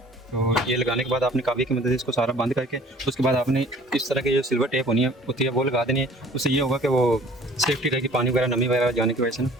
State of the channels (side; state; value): both; normal; correlation 0.51